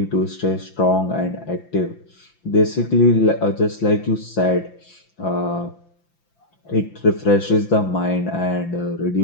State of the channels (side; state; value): right; late; 5.9 ms